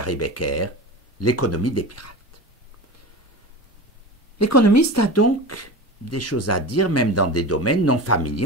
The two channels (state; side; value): normal; both; correlation 0.29